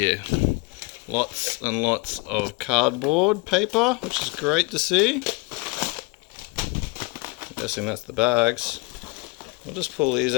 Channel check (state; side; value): quieter; right; 25.2 dB